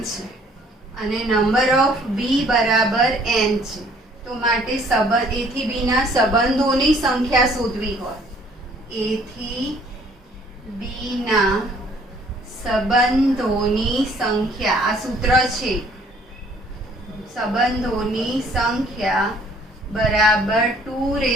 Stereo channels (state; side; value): normal; both; correlation 0.59